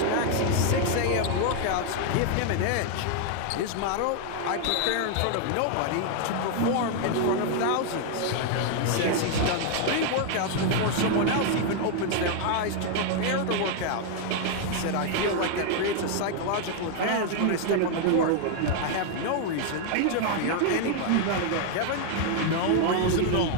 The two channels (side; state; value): both; different; correlation 0.00